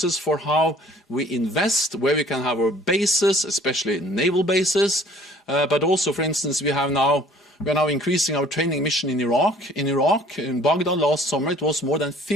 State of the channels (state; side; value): normal; both; correlation 0.54